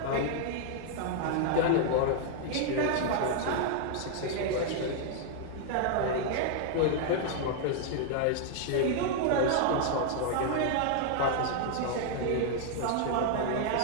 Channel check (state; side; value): different; both; correlation 0.00